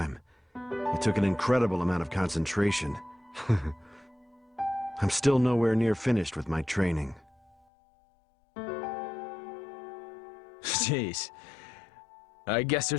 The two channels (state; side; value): drops out; right; at 7.6 s